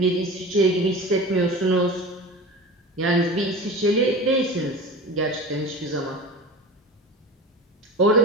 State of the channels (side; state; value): both; normal; correlation 0.34